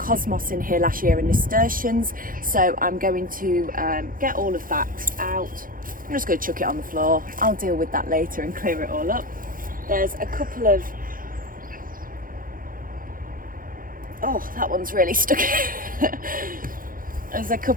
in here last year and nasturtiums, so I'm going to get all of that out. I'm just going to chuck it on the floor. I'll deal with that later and clear it all up. There's a couple of, oh, that one's really stuck. There's a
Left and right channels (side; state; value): left; late; 0.40 ms